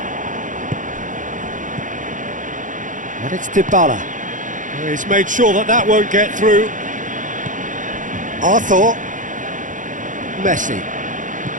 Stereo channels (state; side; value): late; left; 0.37 ms